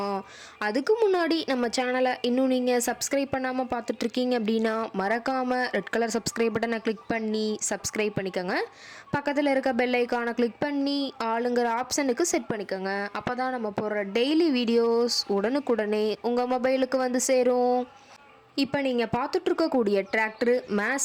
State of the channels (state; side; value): identical; both; correlation 1.00